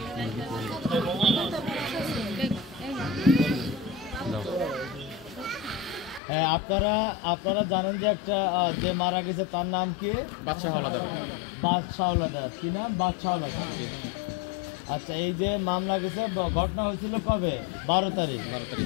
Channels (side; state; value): right; drops out; at 6.2 s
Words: আপনারা আপনারা জানেন যে একটা যে মারা গেছে তার নাম কি? বাদশাহ হাওলাদার। বাদশাহ হাওলাদার। কি নাম? বাদশাহ হাওলাদার। আচ্ছা, এই যে মামলা গেছে, ঘটনা হয়েছিল কবে? 12 তারিখ।